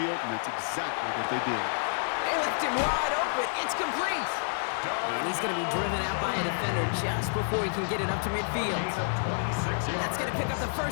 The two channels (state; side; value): silent; right; digital silence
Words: and that's exactly what they did. They left him wide open. It's complete. And he's going to be driven out by a defender just before he can get it up to midfield. That's going to pick up the